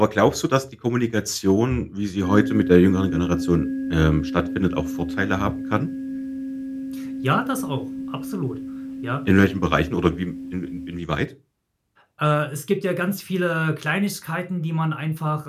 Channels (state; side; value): identical; both; correlation 1.00